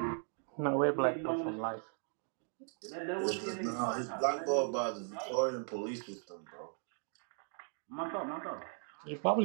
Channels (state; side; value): silent; left; 53 dB below the other